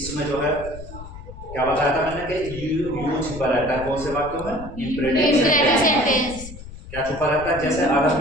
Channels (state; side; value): noise; left; rumble, 14 dB below the sound